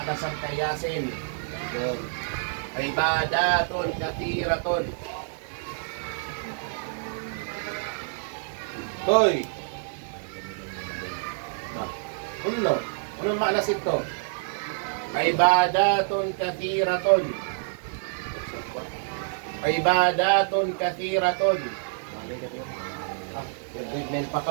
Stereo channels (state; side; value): silent; left; 60 dB below the other